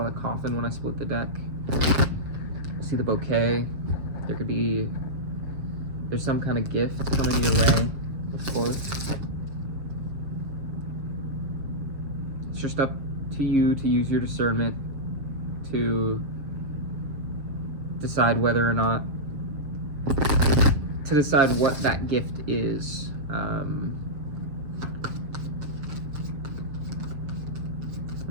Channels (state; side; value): late; left; 6.6 ms